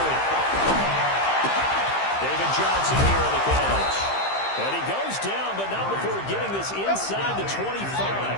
David Johnson here on the catch. And he goes down, but not before getting this inside the 25.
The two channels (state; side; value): late; right; 15 ms